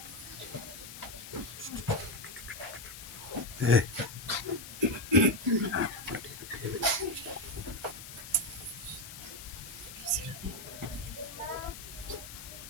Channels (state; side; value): noise; left; hiss, 12 dB below the sound